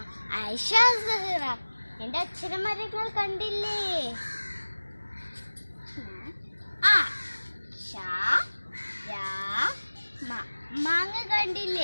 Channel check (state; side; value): inverted; both; correlation -1.00